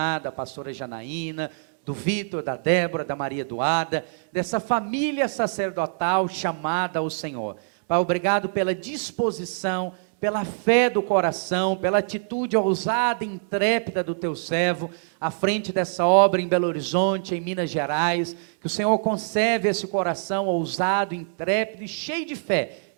da pastora Janaína, do Vitor, da Débora, da Maria Eduarda, dessa família sacerdotal chamada ao Senhor. Pai, obrigado pela disposição, pela fé do coração, pela atitude ousada e intrépida do teu servo, à frente dessa obra em Belo Horizonte, em Minas Gerais. Que o Senhor conserve esse coração ousado, intrépido e cheio de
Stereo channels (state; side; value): silent; left; digital silence